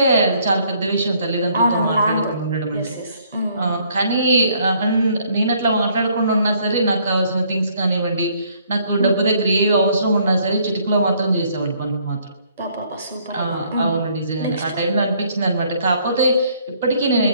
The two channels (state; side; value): inverted; both; correlation -0.64